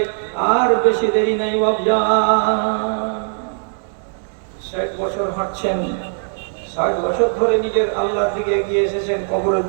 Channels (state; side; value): silent; left; 66 dB below the other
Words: আর বেশি দেরি নাই বাবজান। 60 বছর হাঁটছেন, 60 বছর ধরে নিজের আল্লাহর দিকে এগিয়ে এসেছেন, কবরের